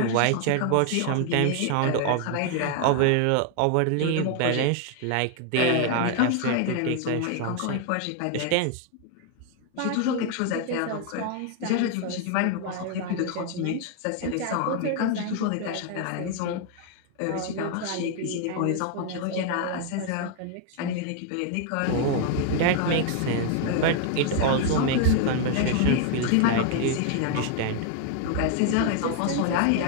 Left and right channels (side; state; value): both; different; correlation 0.00